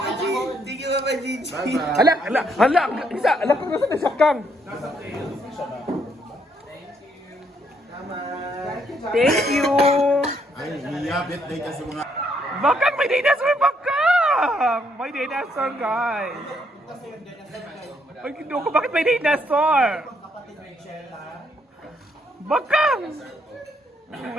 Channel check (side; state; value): both; normal; correlation 0.72